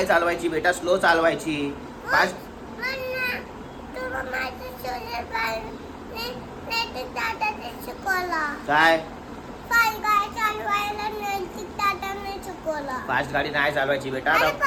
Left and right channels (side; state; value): both; identical; correlation 1.00